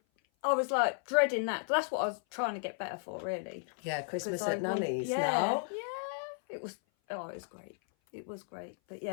I was like dreading that. That's what I was trying to get better for, really. Yeah, Christmas at Nanny's now. Yeah, it was great. It was great. But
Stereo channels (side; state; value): right; silent; 55 dB below the other